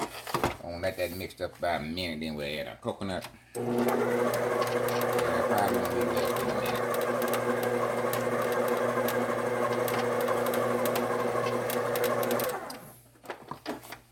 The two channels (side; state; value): both; identical; correlation 1.00